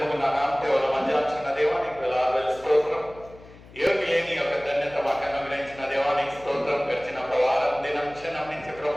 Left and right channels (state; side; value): noise; left; hum, 21 dB below the sound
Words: ముగ్గురు నా నామదేవుల మధ్యాచిన దేవానికి వేలాది స్తోత్రం. యోగి లేని యొక్క ధన్యత మాకు అనుగ్రహించిన దేవానికి స్తోత్రం. గడిచిన వారం దినం క్షణం నుంచి